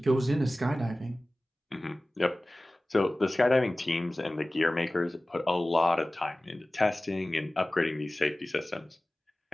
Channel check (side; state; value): both; normal; correlation 0.97